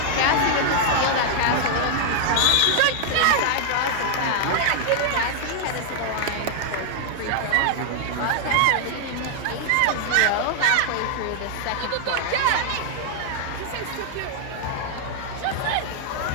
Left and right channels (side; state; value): both; different; correlation 0.00